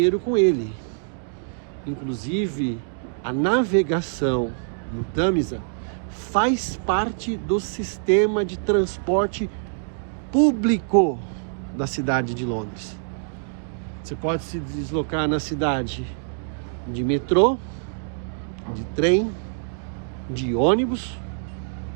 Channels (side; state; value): left; silent; digital silence